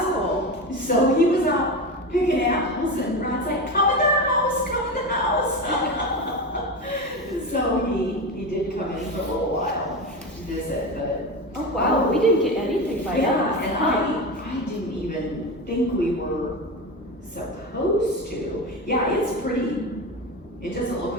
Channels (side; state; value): both; normal; correlation 0.22